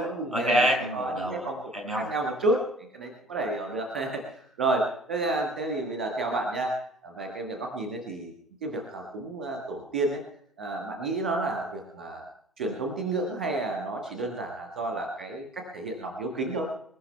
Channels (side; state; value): both; normal; correlation 0.48